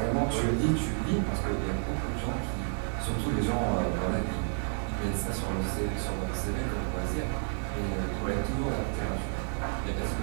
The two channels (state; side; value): silent; left; 57 dB below the other